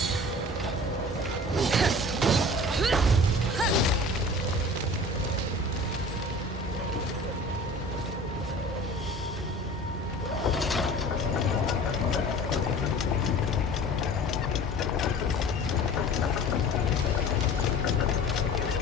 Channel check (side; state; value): both; normal; correlation 0.42